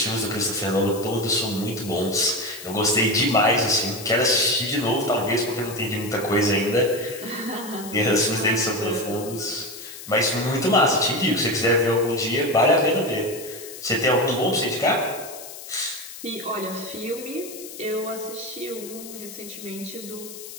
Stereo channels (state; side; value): noise; left; hiss, 13 dB below the sound